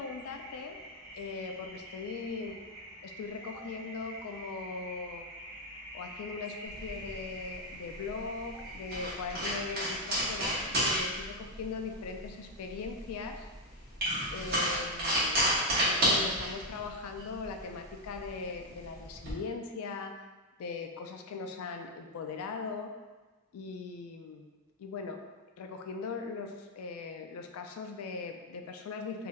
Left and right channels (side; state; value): both; normal; correlation 0.03